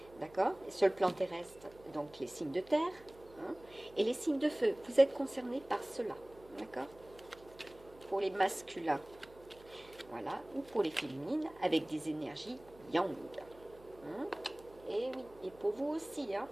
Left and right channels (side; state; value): right; noise; hum, 23 dB below the sound